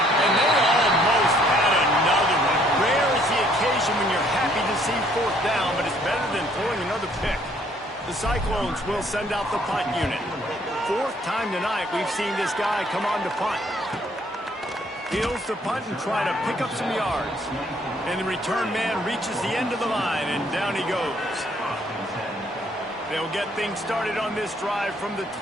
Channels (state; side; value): normal; both; correlation 0.64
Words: they almost had another one. Rare is the occasion when you're happy to see 4th down, but it's better than throwing another pick. The Cyclones will send out the punt unit. 4th time tonight we've seen this guy come on to punt. Heels to punt and try to pick up some yards. And the return man reaches the end of the line, and down he goes. They'll get things started on this drive from the